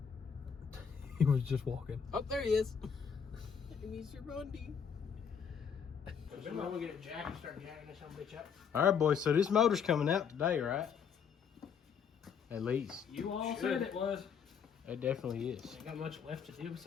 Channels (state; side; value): quieter; right; 7.1 dB